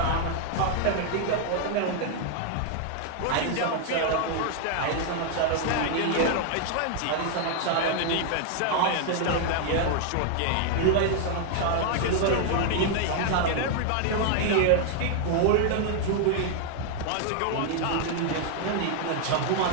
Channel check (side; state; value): both; different; correlation 0.00